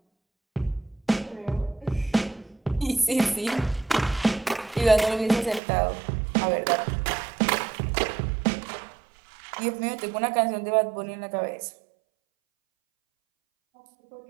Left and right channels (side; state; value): left; drops out; at 5.6 s